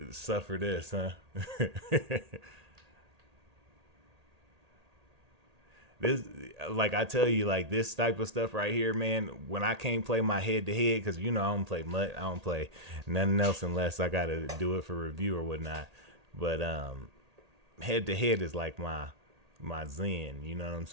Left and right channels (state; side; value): late; left; 1.8 ms